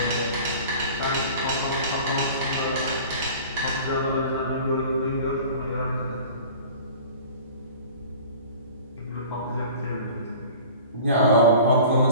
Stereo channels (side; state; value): both; inverted; correlation -0.42